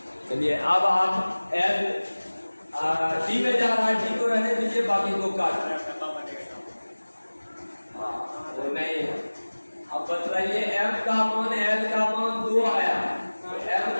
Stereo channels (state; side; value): inverted; both; correlation -1.00